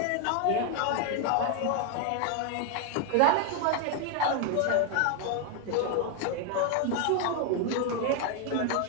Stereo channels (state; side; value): different; both; correlation 0.00